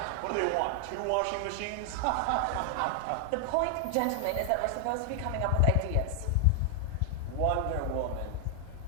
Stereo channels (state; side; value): different; both; correlation 0.00